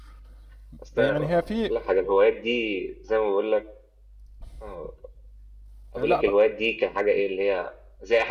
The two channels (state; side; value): identical; both; correlation 1.00